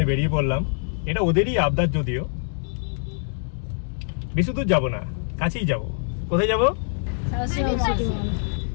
বেরিয়ে পড়লাম। এটা ওদেরই আবদার, যদিও বেশি দূর যাবো না, কাছেই যাব। কোথায় যাব?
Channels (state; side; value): silent; right; digital silence